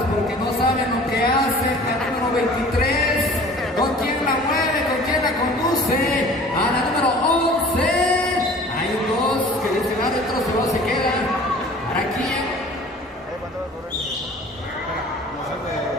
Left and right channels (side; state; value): both; normal; correlation 0.46